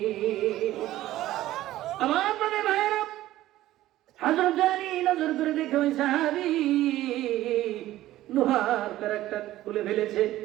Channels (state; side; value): quieter; left; 14.9 dB